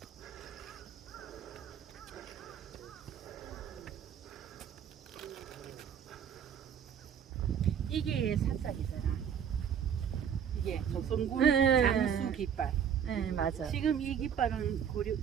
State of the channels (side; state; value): left; quieter; 8.2 dB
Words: 이게 사짝이잖아. 이게 조선군 장수 깃발. 네, 맞아. 지금 이 깃발은